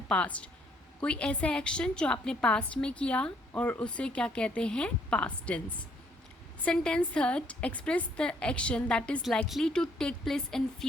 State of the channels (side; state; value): both; normal; correlation 0.67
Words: past. कोई ऐसा एक्शन जो आपने पास्ट में किया और उसे क्या कहते हैं, past tense. Sentence third express the action that is likely to take place in